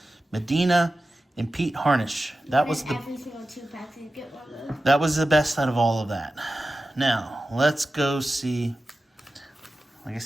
Medina and Pete Harnish. That was the every single 2 packs you get one of those. That was the best out of all of that. Now, let's go see. Like I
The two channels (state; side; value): normal; both; correlation 0.94